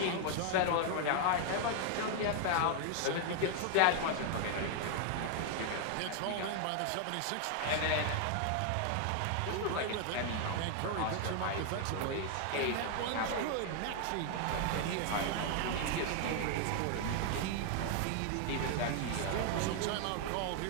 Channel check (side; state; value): both; different; correlation 0.00